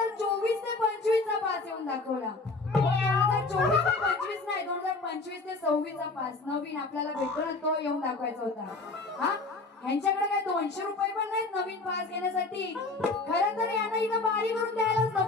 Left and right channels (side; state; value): right; quieter; 3.5 dB